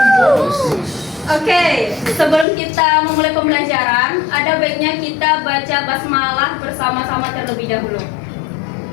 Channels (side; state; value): right; drops out; at 2.5 s